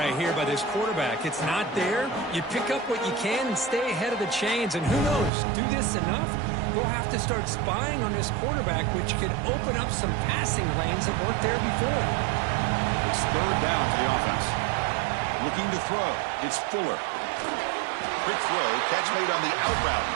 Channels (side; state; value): left; drops out; at 5.3 s